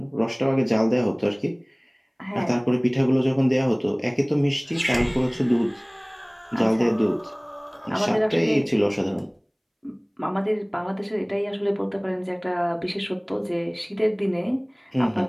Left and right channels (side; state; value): both; identical; correlation 1.00